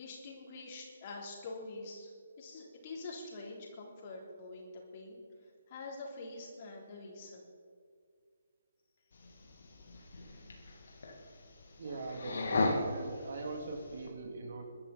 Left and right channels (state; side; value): inverted; both; correlation -0.78